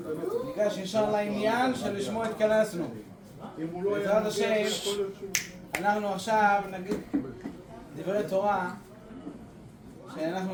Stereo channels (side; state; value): both; identical; correlation 1.00